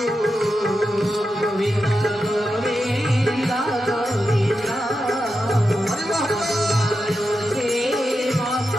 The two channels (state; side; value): normal; both; correlation 0.89